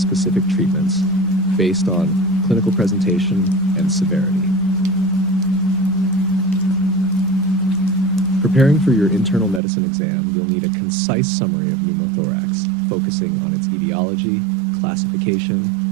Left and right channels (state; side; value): drops out; left; at 9.6 s